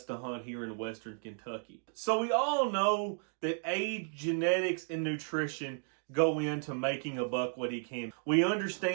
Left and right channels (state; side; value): silent; left; 55 dB below the other